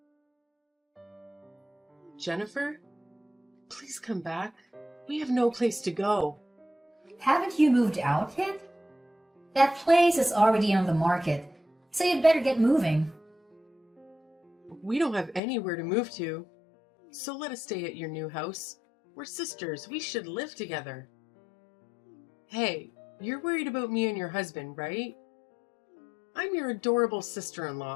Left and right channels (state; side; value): drops out; right; at 15.4 s